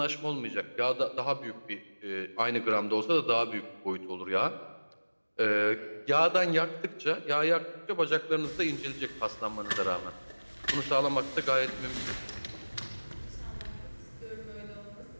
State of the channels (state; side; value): inverted; both; correlation -1.00